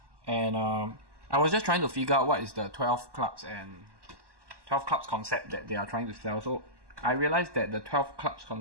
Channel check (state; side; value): late; left; 1.1 ms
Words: and I was just trying to figure out what is the 12 clubs concept that they are trying to sell. So I realized that the 12 clubs